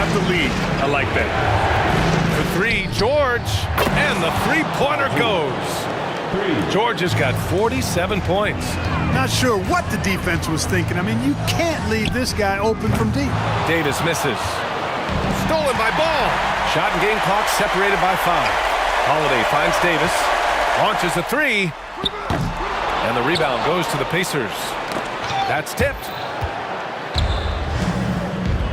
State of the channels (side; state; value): both; identical; correlation 1.00